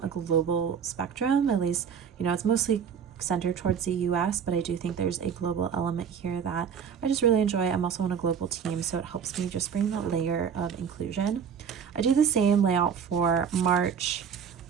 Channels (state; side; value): quieter; left; 7.3 dB